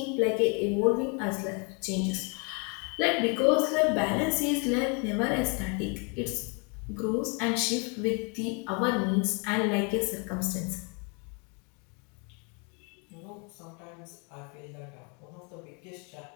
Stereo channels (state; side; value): quieter; right; 34.6 dB